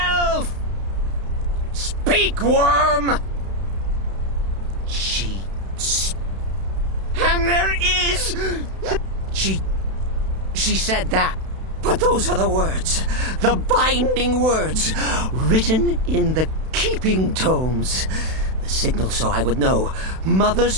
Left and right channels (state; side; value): late; left; 32 ms